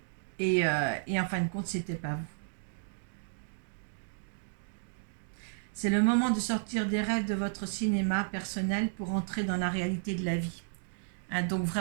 et en fin de compte, c'était pas vous. C'est le moment de sortir des rêves de votre cinéma personnel pour entrer dans la réalité de la vie. Hein, donc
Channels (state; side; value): silent; left; digital silence